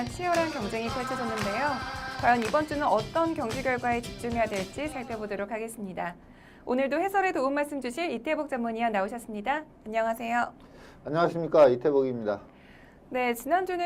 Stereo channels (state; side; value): identical; both; correlation 1.00